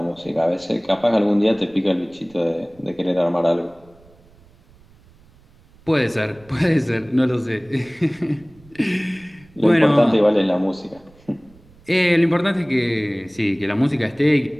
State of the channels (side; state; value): right; noise; rumble, 28 dB below the sound